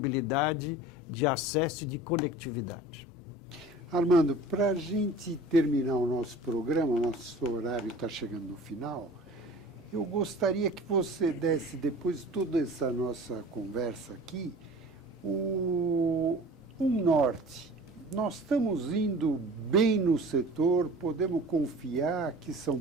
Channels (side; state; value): both; normal; correlation 0.42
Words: de acesso e de conectividade. Armando, para a gente terminar o nosso programa, o nosso horário está chegando no final, eu gostaria que você desse, depois de toda essa nossa conversa aqui, um norte. Nós estamos indo bem no setor, podemos confiar que São